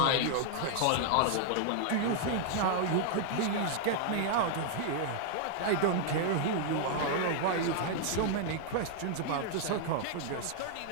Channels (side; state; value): both; different; correlation 0.00